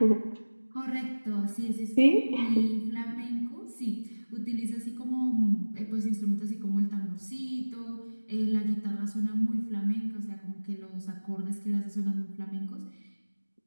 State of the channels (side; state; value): both; inverted; correlation -1.00